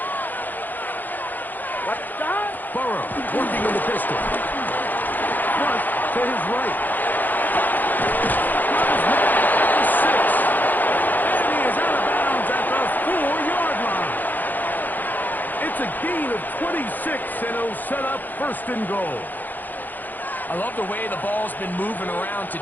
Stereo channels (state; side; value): late; right; 0.085 ms